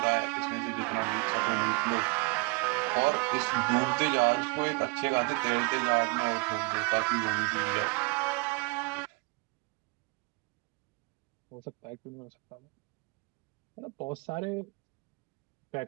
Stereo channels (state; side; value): quieter; left; 30.2 dB